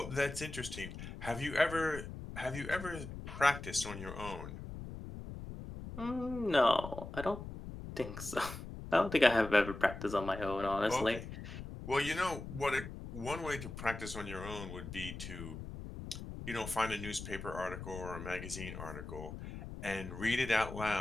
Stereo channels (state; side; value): noise; left; rumble, 9 dB below the sound